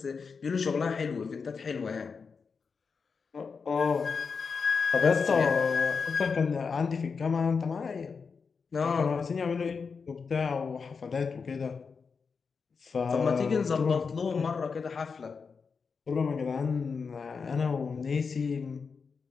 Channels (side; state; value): right; quieter; 5.3 dB